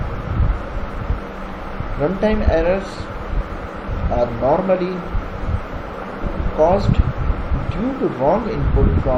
Runtime errors are normally caused due to wrong input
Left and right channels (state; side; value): identical; both; correlation 1.00